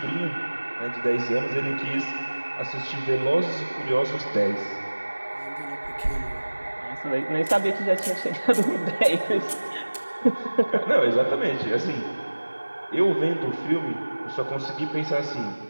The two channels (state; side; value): inverted; both; correlation -1.00